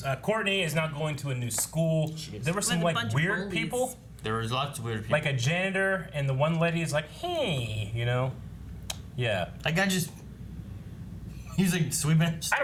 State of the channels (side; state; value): both; identical; correlation 1.00